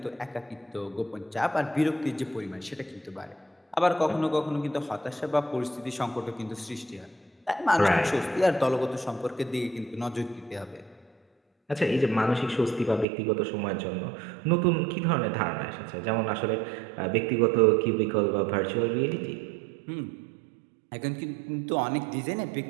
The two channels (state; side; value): drops out; left; at 13.1 s